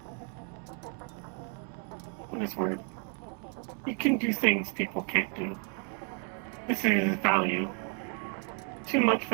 what is word? You can do things people can't do. This is value. Too much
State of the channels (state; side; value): quieter; left; 37.7 dB